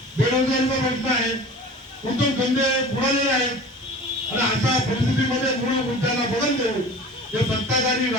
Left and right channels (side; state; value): both; normal; correlation 0.39